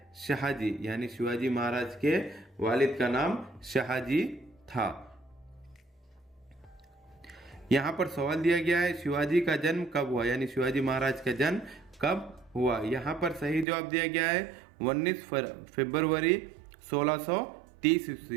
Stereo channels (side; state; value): left; drops out; at 13.7 s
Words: शाहजी। यानी शिवाजी महाराज के वालिद का नाम शाहजी था। यहाँ पर सवाल दिया गया है, शिवाजी का जन्म कब हुआ? यानी शिवाजी महाराज का जन्म कब हुआ? यहाँ पर सही जवाब दिया गया है 19 फरवरी 1630